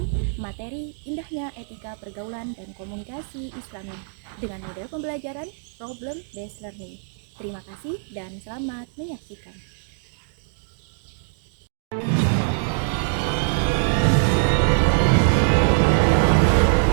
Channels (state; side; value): silent; left; digital silence